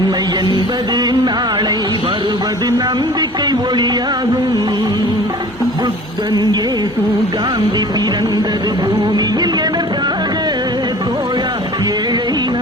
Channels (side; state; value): both; normal; correlation 0.44